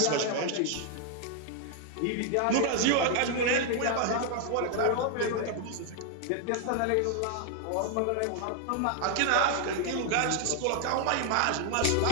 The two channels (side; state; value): both; different; correlation 0.00